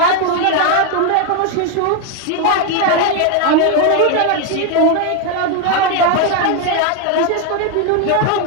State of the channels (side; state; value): both; different; correlation 0.01